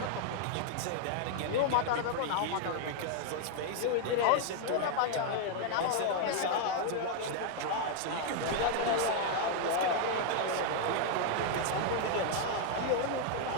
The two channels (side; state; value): both; different; correlation 0.00